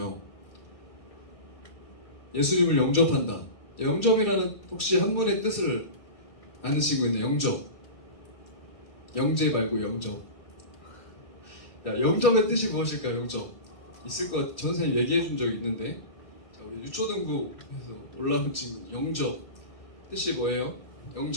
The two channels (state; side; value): late; right; 2.3 ms